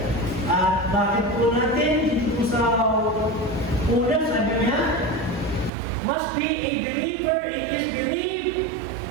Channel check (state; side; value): drops out; left; at 5.7 s